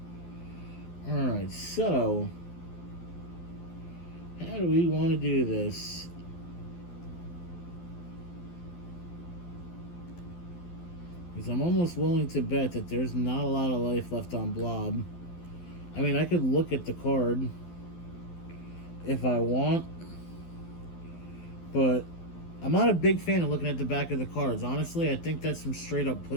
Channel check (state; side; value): late; right; 12 ms